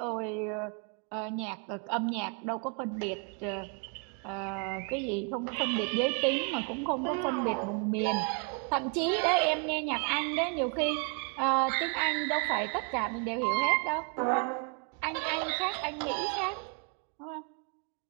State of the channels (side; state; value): left; quieter; 38.1 dB